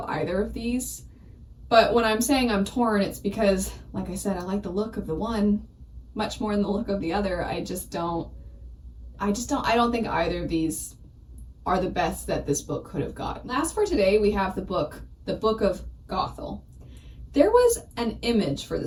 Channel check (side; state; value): both; identical; correlation 1.00